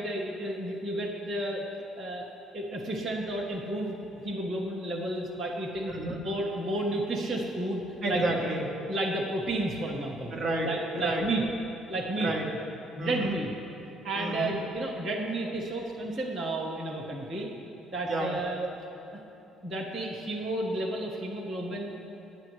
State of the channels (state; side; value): normal; both; correlation 0.66